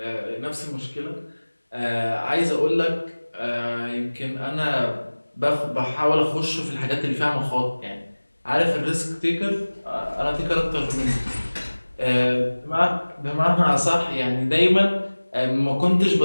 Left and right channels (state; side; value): inverted; both; correlation -1.00